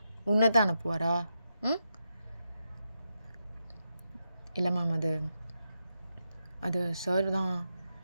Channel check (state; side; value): inverted; both; correlation -0.86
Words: உன்னை தான் அனுப்புவாரா? இல்லை மேம் அது சார் தான்.